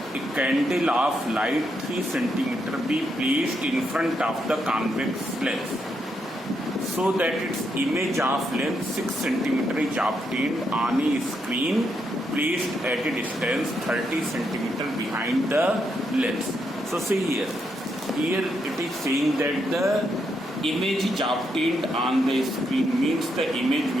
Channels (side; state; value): both; normal; correlation 0.80